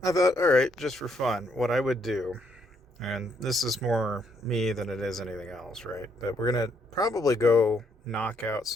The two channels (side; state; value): both; normal; correlation 0.72